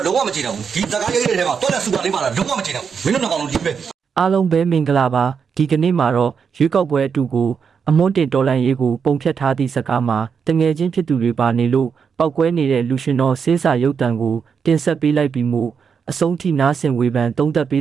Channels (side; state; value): left; quieter; 6.4 dB